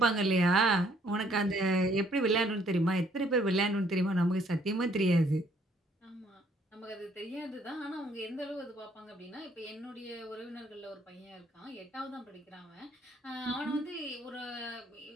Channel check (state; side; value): normal; both; correlation 0.65